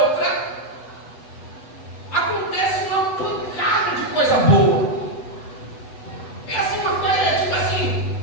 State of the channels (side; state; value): right; late; 8.0 ms